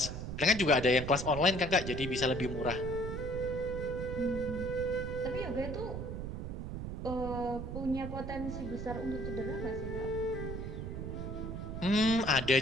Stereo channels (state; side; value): noise; right; rumble, 5 dB below the sound